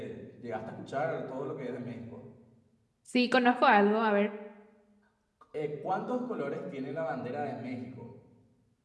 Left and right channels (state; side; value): identical; both; correlation 1.00